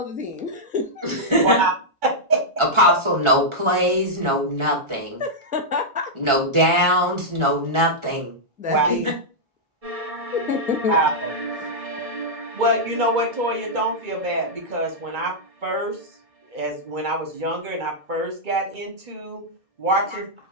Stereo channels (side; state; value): left; late; 1.4 ms